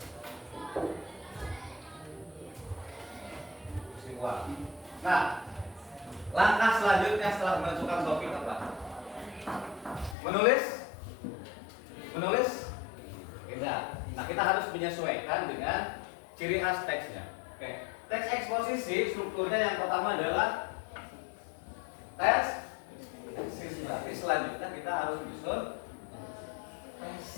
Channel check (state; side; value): drops out; right; at 10.2 s